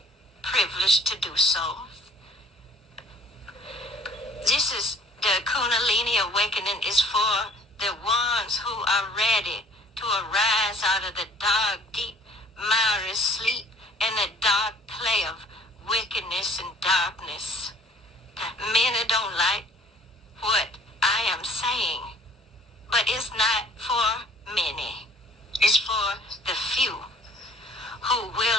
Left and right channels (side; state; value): both; normal; correlation 0.55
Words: privilege to do so. This is the Kundalini awakening is for the ones who are ready to arise out of the dark, deep, miry sleep and the dark play of wickedness and darkness. Many don't like what I am saying, but it's not for many. It's for the few who